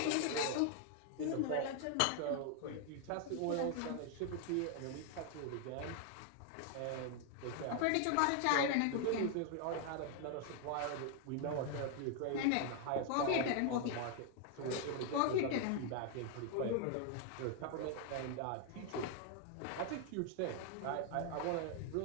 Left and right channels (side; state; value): both; different; correlation 0.00